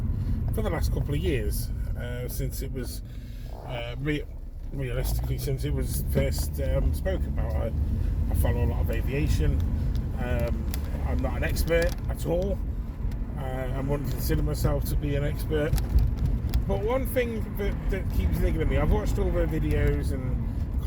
for the last couple of years since it was realistically since it was first spoke about. I follow a lot of aviation. I'm not an expert at all. I wouldn't consider myself to be an expert. But one thing that keeps niggling me, I've watched all the videos and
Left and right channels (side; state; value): both; identical; correlation 1.00